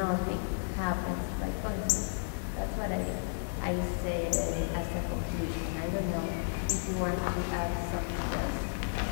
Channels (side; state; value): right; silent; digital silence